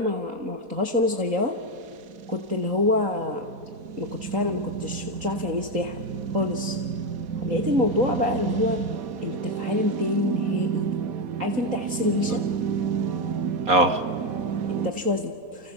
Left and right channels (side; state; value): left; late; 4.1 ms